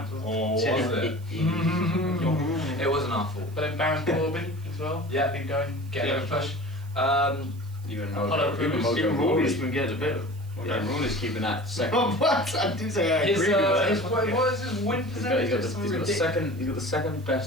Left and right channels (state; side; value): noise; right; hiss, 26 dB below the sound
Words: Or was it? It wasn't our fault. But then Baron Corbin as well. Yeah. Been going. Get a push. Even Apollo Crews. Mojo Even Rawley's Rawley. been getting a bit. Rawley's keeping that second. Oh, what? I do say I His, agree with that. what is his win percentage? He's got the second